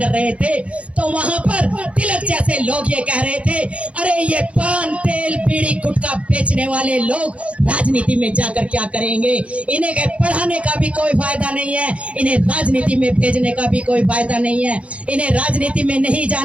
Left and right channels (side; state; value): left; late; 0.062 ms